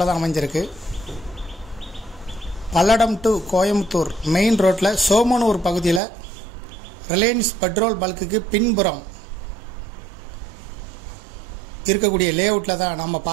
தான் அமைஞ்சிருக்கு. பல்லடம் டு கோயம்புத்தூர் மெயின் ரோட்டில் சோமனூர் பகுதியில் ரிலையன்ஸ் பெட்ரோல் பல்க்குக்கு பின்புறம் இருக்கக்கூடிய லேஅவுட்டில் தான் நம்ம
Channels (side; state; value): left; drops out; at 6.0 s